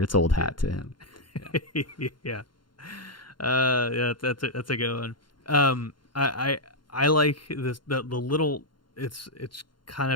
old hat to him. Yeah. That's a good one. I like this the little, it's kind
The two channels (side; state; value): right; late; 0.72 ms